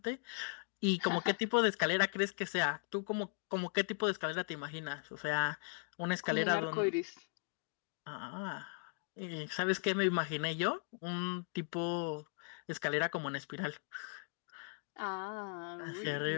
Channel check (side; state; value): right; silent; 52 dB below the other